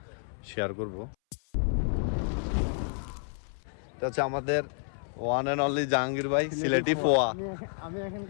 শেয়ার করব। এটা হচ্ছে আমাদের ওয়ান অ্যান্ড অনলি জাহাঙ্গীর ভাই, সিলেটি ফোয়া। আমি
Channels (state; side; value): silent; right; 58 dB below the other